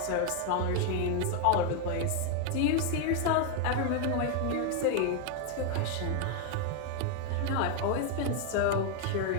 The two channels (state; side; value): different; both; correlation 0.01